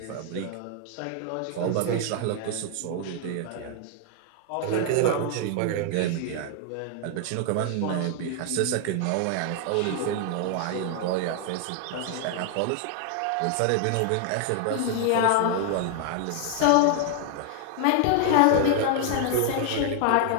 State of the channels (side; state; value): both; different; correlation 0.00